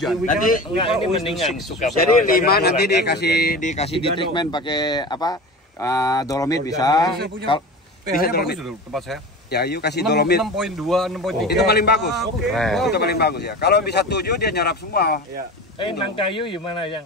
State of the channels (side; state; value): both; normal; correlation 0.31